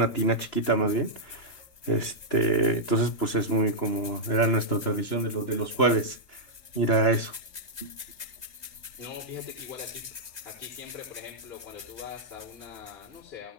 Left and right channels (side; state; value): right; late; 3.0 ms